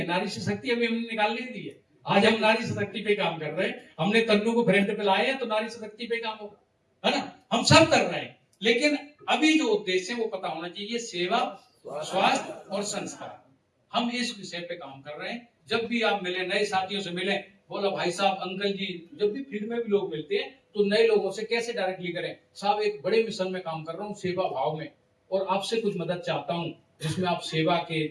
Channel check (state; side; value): identical; both; correlation 1.00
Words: नारी शक्ति अभी हमने निकाल नहीं दी है। आज हम नारी शक्ति पे काम कर रहे हैं, हमने तन्नू को फ्रंट पे लाए हैं, तो नारी शक्ति पे काम होगा, है ना। हम सब कर रहे हैं, लेकिन अभी जो उद्देश्य है वो पता होना चाहिए, सेवा, स्वास्थ्य और संस्कार। हम इस विषय पे काम कर रहे हैं। जब भी आप मिले, नए साथियों से मिले, बोला भाई साहब, अंकल जी, जब भी फील्ड में भी लोग मिलते हैं तो नए लोगों से कैसे डायरेक्टली करें, साहब एक बड़े मिशन में काम कर रहा हूँ, सेवा भाव में, और आपसे कुछ मदद चाहता हूँ, जिसमें आप सेवा के